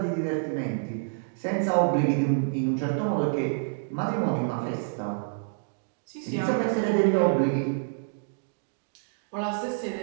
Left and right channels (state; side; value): silent; left; digital silence